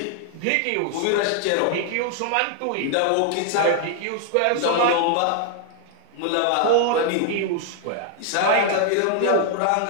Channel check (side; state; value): both; different; correlation 0.00